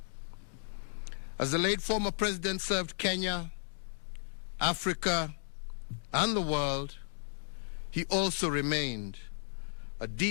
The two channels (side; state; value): right; silent; digital silence